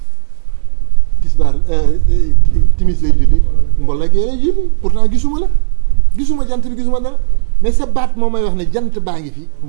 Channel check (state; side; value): silent; left; digital silence